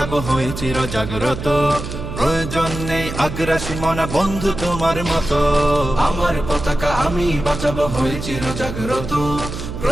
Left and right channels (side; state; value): right; noise; hum, 8 dB below the sound